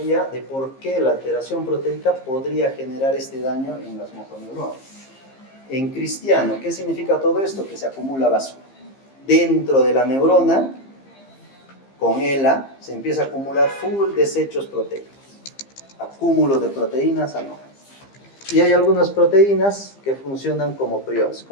de por qué la alteración proteica podría generar este daño en las motoneuronas. En cristiano, ¿qué significa todo esto? Que se acumula basura. Dentro de la neurona, con ELA, se empieza a acumular full desechos proteicos. Acúmulo de proteínas anómalas. Y hay algunas proteínas que funcionan como priones,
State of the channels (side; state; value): right; late; 15 ms